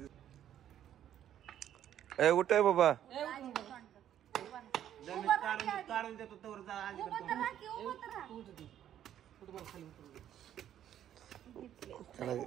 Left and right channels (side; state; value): left; quieter; 10.8 dB